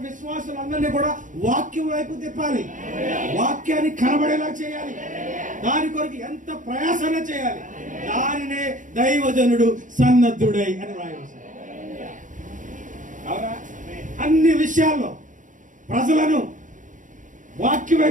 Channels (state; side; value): late; left; 0.37 ms